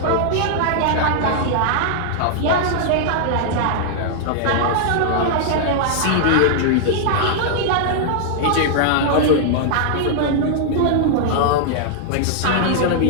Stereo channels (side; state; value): both; different; correlation -0.01